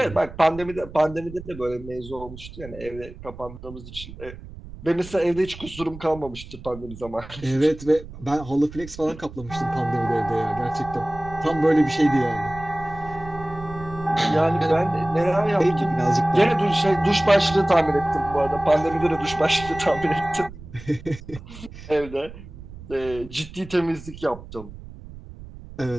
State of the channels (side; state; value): right; noise; rumble, 15 dB below the sound